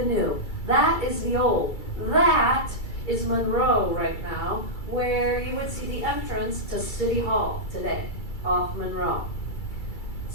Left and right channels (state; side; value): late; right; 2.3 ms